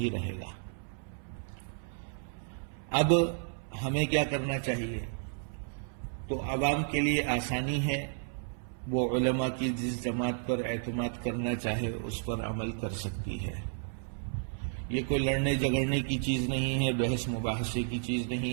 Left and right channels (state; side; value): silent; left; 56 dB below the other